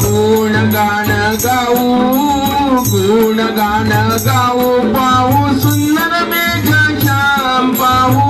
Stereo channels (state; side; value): identical; both; correlation 1.00